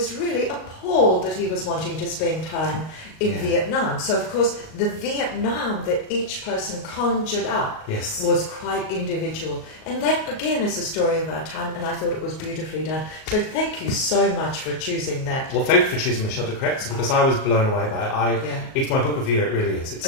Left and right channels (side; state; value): right; late; 38 ms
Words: really appalled that he was wanting to spend time in Vietnam. So, of course, the Vietnam that each person conjured up was quite individual. And that, again, is the story of our time, and I thought it was beautifully done. So thank you so much for choosing that. Well, thank you for choosing Michel de Kretser, because I was blown away by it. It's my book of the year, it really is.